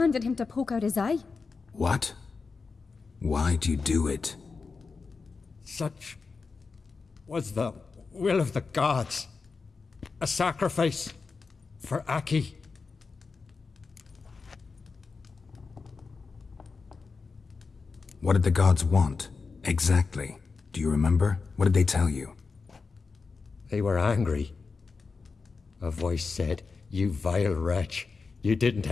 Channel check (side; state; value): right; quieter; 4.6 dB